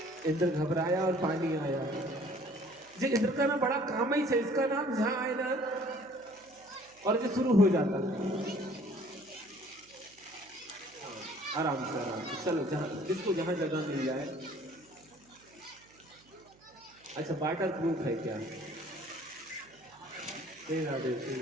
इंद्र घबराया और पानी आया। जी इंद्र का ना बड़ा काम ही है, इसका नाम जहां आए ना और जो शुरू हो जाता। आराम से चलो, जहां जिसको जहां जगह मिल जाए। अच्छा वाटर प्रूफ है क्या? श्री राधे श्री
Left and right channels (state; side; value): noise; right; hum, 29 dB below the sound